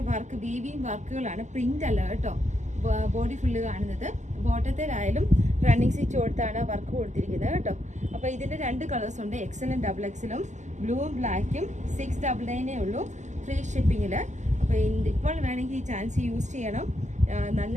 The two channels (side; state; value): left; late; 0.34 ms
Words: വർക്ക്, വീവിങ് വർക്കുകളാണ്, പ്രിന്റ് അല്ല കേട്ടോ. ബോഡി ഫുള്ള് കാണുന്നത്. ബോട്ടത്തിലായാലും റണ്ണിങ് സ്റ്റിച്ച് കൊടുത്താണ് വർക്ക് കൊടുത്തിരിക്കുന്നത് കേട്ടോ. അപ്പോൾ ഇതിൻ്റെ 2 കളേഴ്സ് ഉണ്ട്, XLും XXLും. ബ്ലൂവും ബ്ലാക്കും 699 ഉള്ളൂ ഫ്രീ ഷിപ്പിങ്ങിൽ. അപ്പോൾ ഇപ്പോൾ വേണമെങ്കിൽ ഈ ചാൻസ് യൂസ് ചെയ്യണം. നല്ല